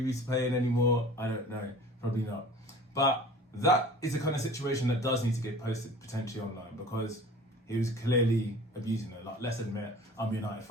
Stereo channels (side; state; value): both; normal; correlation 0.44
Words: be playing anymore? I don't know. Probably not. But that is the kind of situation that does need to get posted potentially online because he was clearly abusing her. Like, let's admit, I'm a United